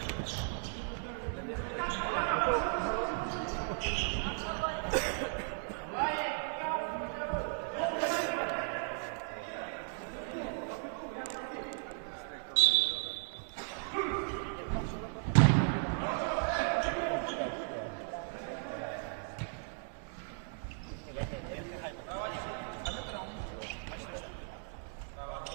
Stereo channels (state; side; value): silent; left; 54 dB below the other